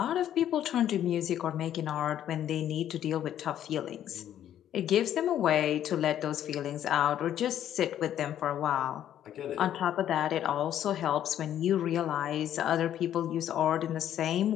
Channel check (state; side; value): quieter; right; 10.9 dB